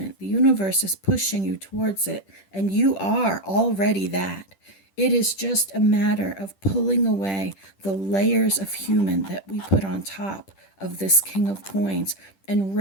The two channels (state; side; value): late; right; 10 ms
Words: The universe is pushing you towards it, and you are already that. It is just a matter of pulling away the layers of human that we put on top of this King of Coins and